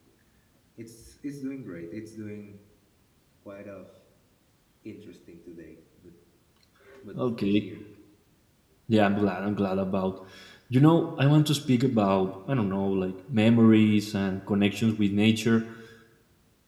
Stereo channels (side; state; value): both; identical; correlation 1.00